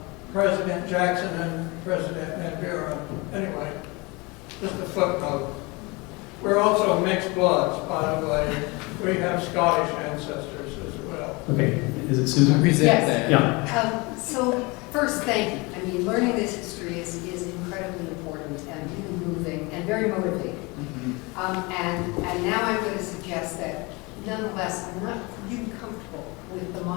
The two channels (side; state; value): right; quieter; 26.2 dB